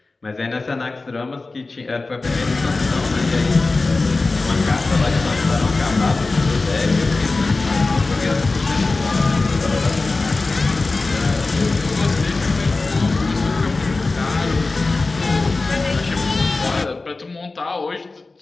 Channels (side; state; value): right; quieter; 3.5 dB